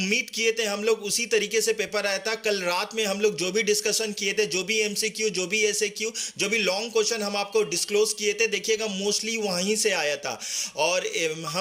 किए थे हम लोग उसी तरीके से पेपर आया था। कल रात में हम लोग जो भी डिस्कशन किए थे, जो भी एमसीक्यू, जो भी एसएक्यू, जो भी लॉन्ग क्वेश्चन हम आपको डिस्क्लोज किए थे, देखिएगा मोस्टली वहीं से आया था। और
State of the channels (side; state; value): both; identical; correlation 1.00